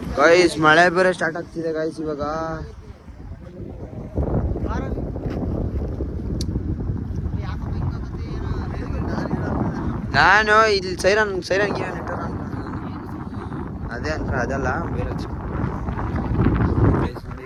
ಗಾಯ್ಸ್ ಮಳೆ ಬೇರೆ ಸ್ಟಾರ್ಟ್ ಆಗ್ತಿದೆ ಗಾಯ್ಸ್ ಇವಾಗ. ನಾನು ಇಲ್ಲಿ ಸೈರನ್ ಗಿರನ್ ಇಟ್ಟಾರ ಅದೇ ಅದಲ್ಲ ಬೇರೆ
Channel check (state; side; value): identical; both; correlation 1.00